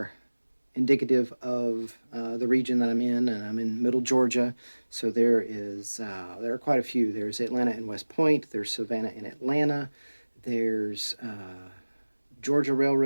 indicative of the region that I'm in, and I'm in Middle Georgia. So there are quite a few. There's Atlanta and West Point. There's Savannah and Atlanta. There's Georgia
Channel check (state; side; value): inverted; both; correlation -1.00